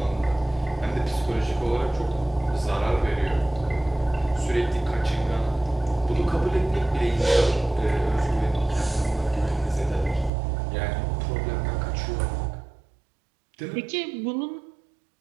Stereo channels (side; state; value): left; drops out; at 10.3 s